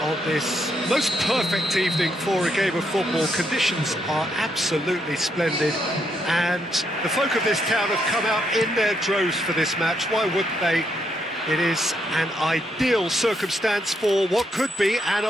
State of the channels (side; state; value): both; normal; correlation 0.77